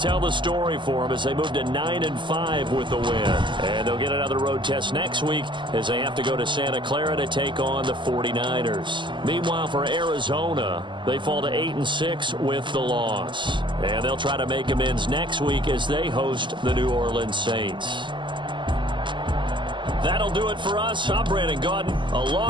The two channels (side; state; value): left; late; 0.23 ms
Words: the story for them as they move to 9-5 with the win. And they'll get another road test next week as they have to go to Santa Clara to take on the 49ers. Meanwhile, for Arizona, they fall to 8-6 with the loss. And they'll try to make amends next week as they host the New Orleans Saints. That'll do it for us. I'm Brandon Gaudin